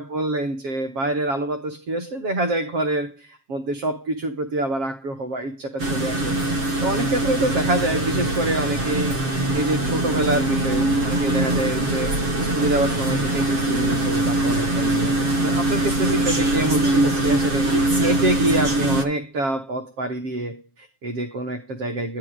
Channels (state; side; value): late; left; 7.4 ms